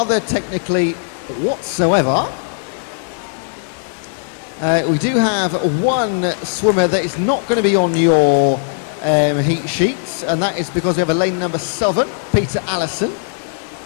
technically whatsoever. We do have one swimmer that is not going to be on your heat sheets, and that is because we have a lane number 7, Peter Allison.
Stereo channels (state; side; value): silent; right; digital silence